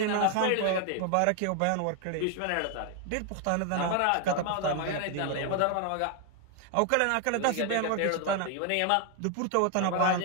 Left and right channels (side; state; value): both; different; correlation 0.00